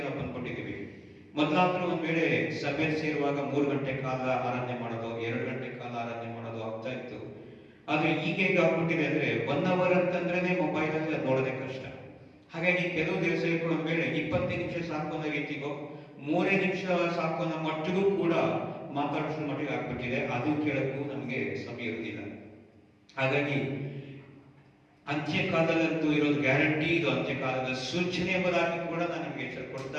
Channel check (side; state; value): both; identical; correlation 1.00